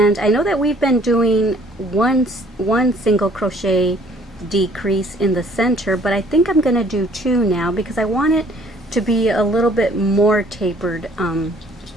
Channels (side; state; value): both; normal; correlation 0.59